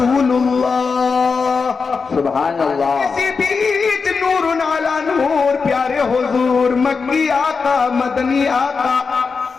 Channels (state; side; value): quieter; right; 5.0 dB